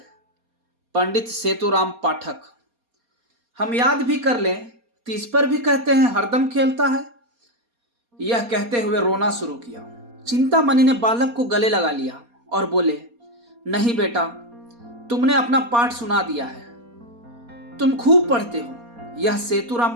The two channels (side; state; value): left; late; 4.2 ms